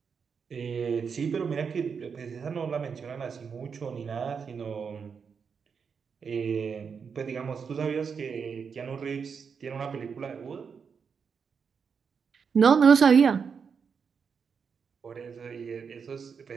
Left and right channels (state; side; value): quieter; left; 6.1 dB